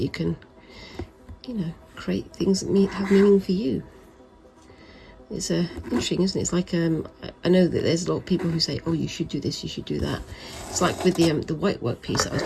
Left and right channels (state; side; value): identical; both; correlation 1.00